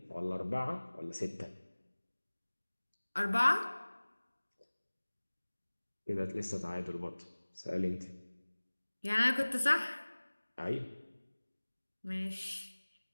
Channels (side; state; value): both; inverted; correlation -1.00